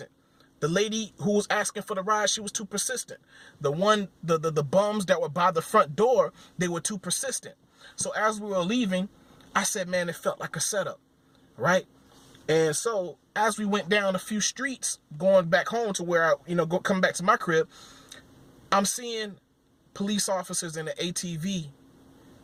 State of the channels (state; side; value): identical; both; correlation 1.00